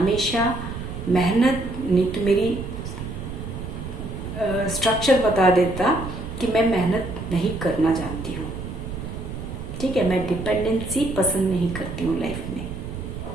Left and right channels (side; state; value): right; noise; rumble, 8 dB below the sound